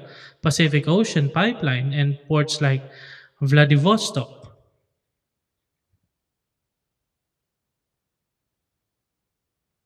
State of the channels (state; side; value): identical; both; correlation 1.00